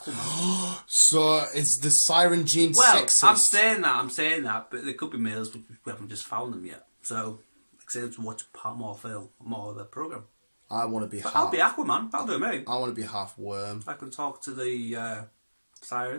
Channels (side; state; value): both; inverted; correlation -1.00